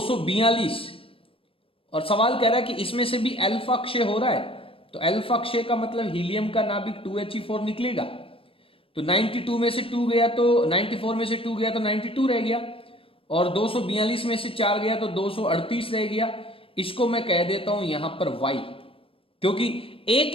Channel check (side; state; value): right; late; 0.26 ms